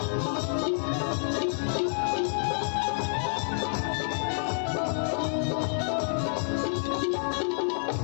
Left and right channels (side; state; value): right; silent; 59 dB below the other